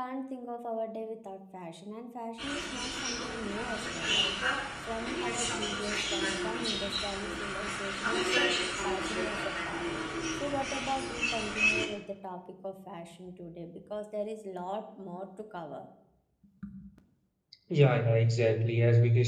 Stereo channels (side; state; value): both; identical; correlation 1.00